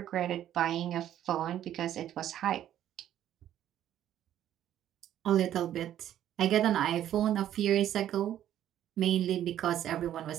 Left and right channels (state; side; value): quieter; left; 11.5 dB